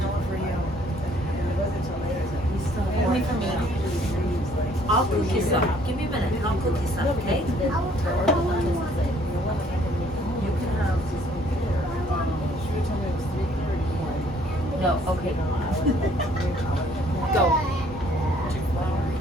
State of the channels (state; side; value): normal; both; correlation 0.61